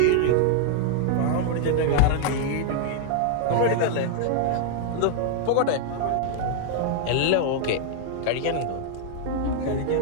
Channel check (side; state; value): both; different; correlation -0.01